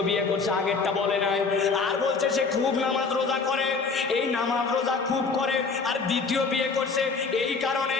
বিয়ে করছে, আগেরটা বলে নাই। আর বলছে সে খুব নামাজ রোজা করে, এই নামাজ রোজা খুব করে, আর দ্বিতীয় বিয়ে করছে। এই কারণে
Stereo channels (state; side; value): quieter; right; 4.6 dB